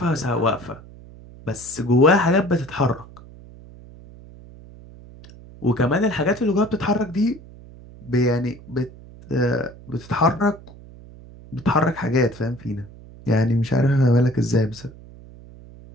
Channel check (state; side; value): noise; right; hum, 19 dB below the sound